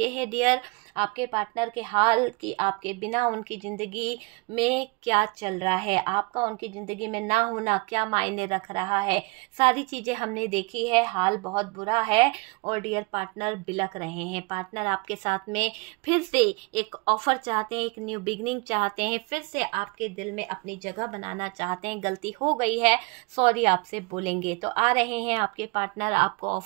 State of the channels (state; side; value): quieter; left; 28.2 dB